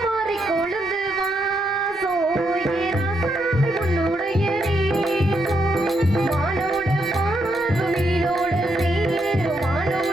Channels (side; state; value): both; normal; correlation 0.79